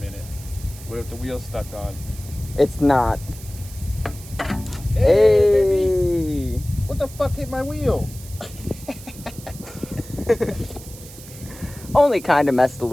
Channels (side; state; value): right; noise; hiss, 17 dB below the sound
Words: What if the wheel's stuck on? It's not. Hey! Baby. What the fuck hit my wheel? Only kind of messed a